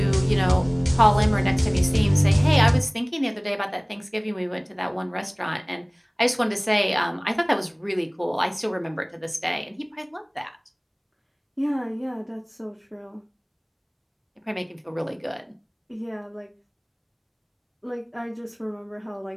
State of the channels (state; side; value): identical; both; correlation 1.00